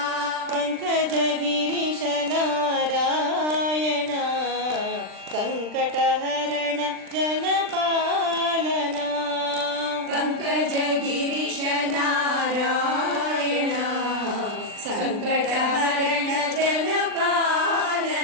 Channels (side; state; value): left; late; 39 ms